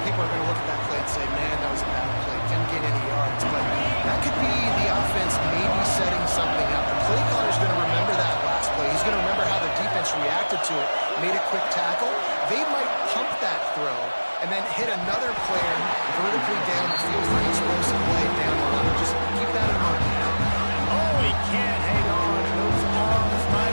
people are going to look at that play and say, man, that was a bad play. Didn't get any yards. But that could be the offense maybe setting something up. The play caller's going to remember that last play. He's going to remember how the defense reacted to it, made a quick tackle. They might pump that throw and then hit another player vertically down the field for an explosive play down the line. Just keep that in mind. Oh, he can't hang on. Those arms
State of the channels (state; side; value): inverted; both; correlation -1.00